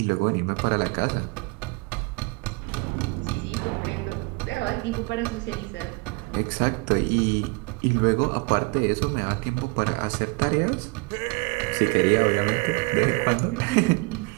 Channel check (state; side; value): quieter; left; 28.5 dB